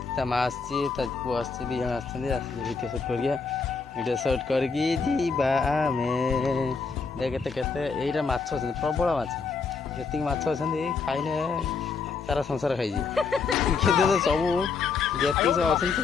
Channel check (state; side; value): quieter; right; 4.9 dB